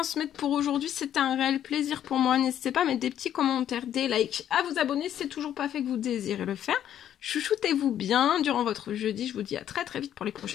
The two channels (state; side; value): quieter; right; 10.6 dB